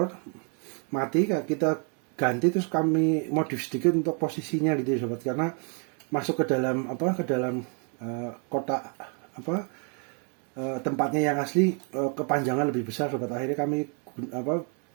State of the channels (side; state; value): left; quieter; 39.2 dB